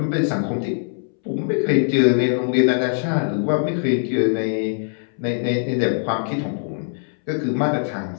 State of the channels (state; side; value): silent; right; 64 dB below the other